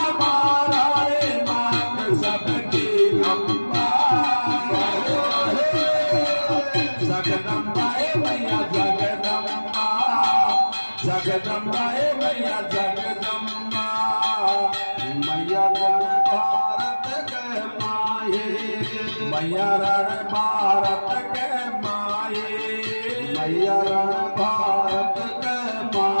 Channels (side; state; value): both; inverted; correlation -1.00